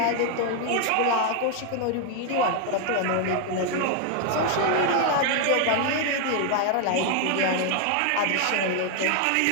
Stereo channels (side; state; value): both; different; correlation 0.01